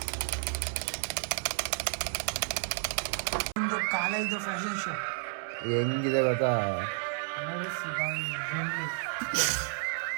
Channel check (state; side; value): silent; left; 56 dB below the other